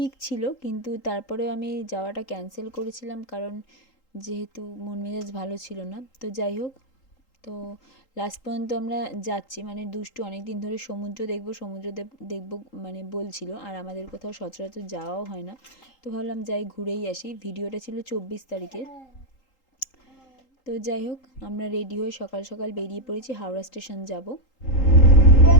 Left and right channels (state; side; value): late; right; 3.8 ms